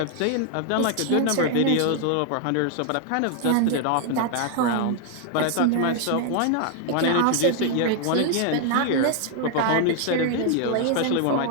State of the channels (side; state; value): both; different; correlation 0.00